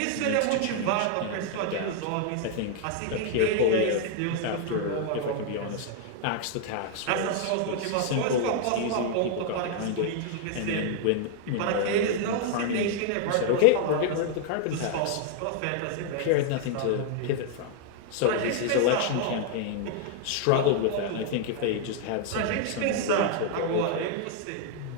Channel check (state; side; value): different; both; correlation 0.00